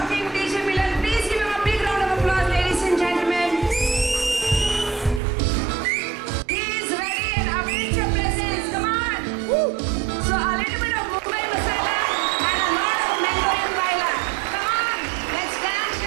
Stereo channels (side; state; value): left; drops out; at 5.2 s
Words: DJ Milan, please give him a big round of applause, ladies and gentlemen. He is ready and awaits your presence. Come on. Woo. So a little bit of Mumbai Masala and a lot of Mango and Baila. Come on, let's dance